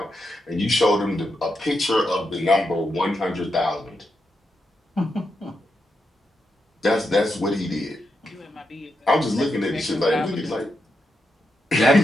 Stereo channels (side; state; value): both; normal; correlation 0.84